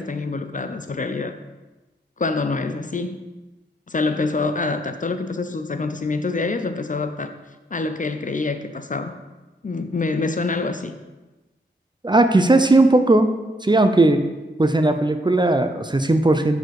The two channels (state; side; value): normal; both; correlation 0.72